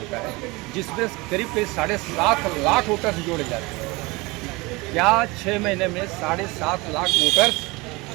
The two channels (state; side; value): quieter; left; 24.1 dB